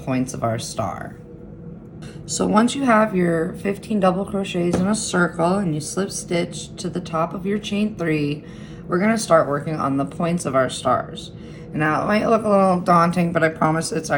of our star. So once you have your 15 double crochets in a circle and you slip stitch to the top of your chain 3, we're going to start working on the points of our stars. Now, it might look a little daunting, but I promise it's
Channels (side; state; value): both; identical; correlation 1.00